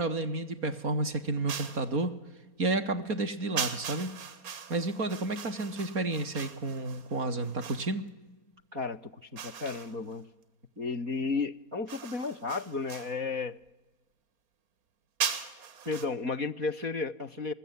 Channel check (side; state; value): left; late; 4.3 ms